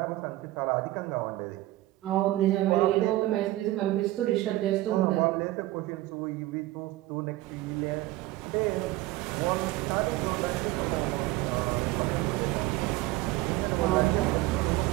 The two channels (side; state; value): left; quieter; 17.2 dB